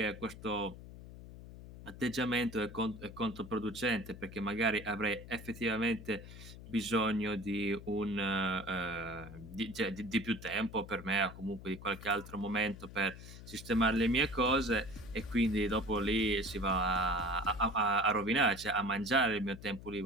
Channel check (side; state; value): left; noise; hum, 14 dB below the sound